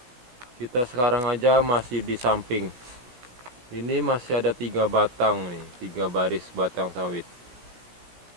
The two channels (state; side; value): late; left; 16 ms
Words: sekarang aja masih di samping. Ini masih ada 3 batang nih, 3 baris batang sawit.